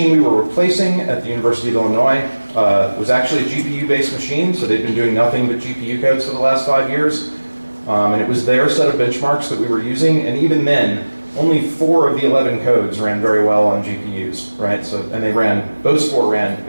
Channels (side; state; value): both; inverted; correlation -1.00